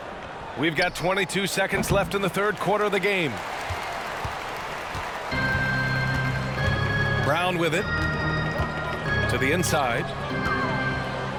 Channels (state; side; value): identical; both; correlation 1.00